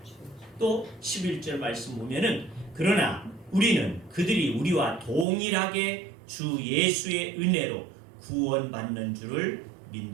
또 11절 말씀 보면은 그러나 우리는 그들이 우리와 동일하게 주 예수의 은혜로 구원받는 줄을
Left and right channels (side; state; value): left; drops out; at 5.2 s